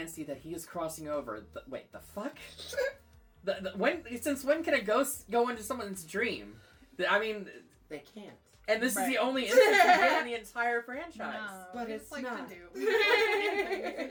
that he is crossing over. Wait, the fuck? Since when can a ghost go into someone's dream? I mean, They can't. and this is Right. the only instance we get in the entire franchise. no, But we it's just like not. to do.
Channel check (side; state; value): both; identical; correlation 1.00